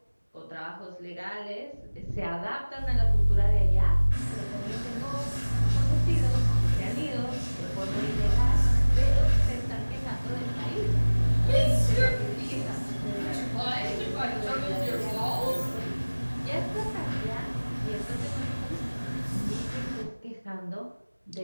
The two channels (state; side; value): inverted; both; correlation -1.00